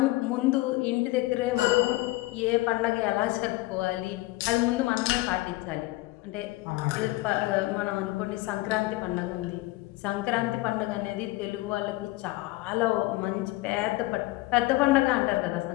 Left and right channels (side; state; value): right; quieter; 19.8 dB